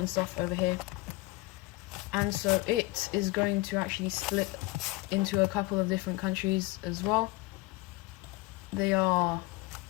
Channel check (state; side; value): quieter; right; 20.8 dB